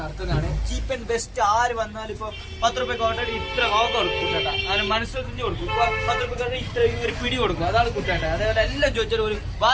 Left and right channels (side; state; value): both; identical; correlation 1.00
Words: ചീപ്പ് ആൻഡ് ബെസ്റ്റ്. ആര് വന്നാലും ഇപ്പൊ 10 രൂപയ്ക്ക് ഓൾറെഡി ഇത്ര കോക്ക കൊടുക്കും കുട്ടേട്ട. അങ്ങനെ മനസ്സിൽ കൊടുക്കും. 10 രൂപയ്ക്ക് ഇത്ര ഒരു പിടി കൊടുക്കും. അതാണ് കുട്ടേട്ട. അതേപോലെ എല്ലാം ചോദിച്ചാലും ഒരു